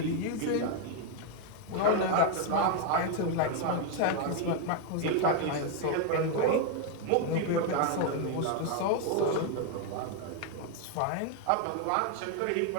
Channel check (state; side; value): different; both; correlation 0.01